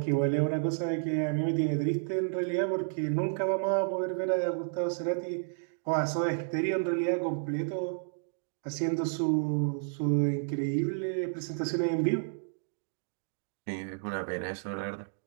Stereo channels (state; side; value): silent; left; digital silence